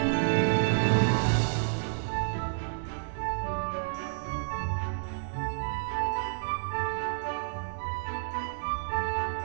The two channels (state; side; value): silent; left; digital silence